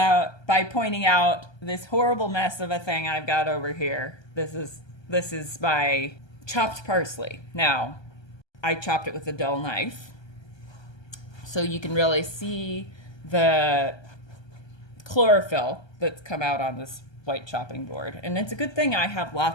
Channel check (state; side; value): late; right; 1.3 ms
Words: by pointing out this horrible mess of a thing I've got over here. This is my chopped parsley. Now, I chopped it with a dull knife, so you can really see the chlorophyll that's come out on this white chopping board. And it's a good thing I have